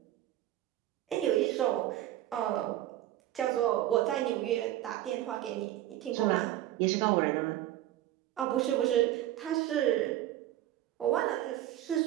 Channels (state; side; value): quieter; left; 13.6 dB